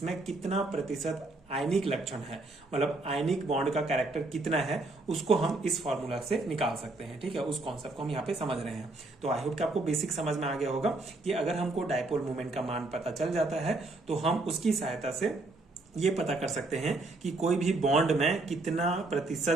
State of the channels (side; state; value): left; quieter; 3.1 dB